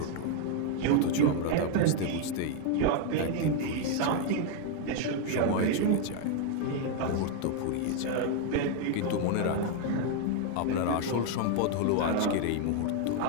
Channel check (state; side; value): different; both; correlation 0.00